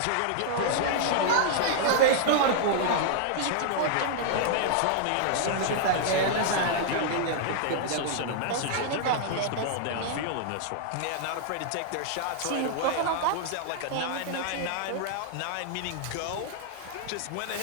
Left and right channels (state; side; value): different; both; correlation -0.01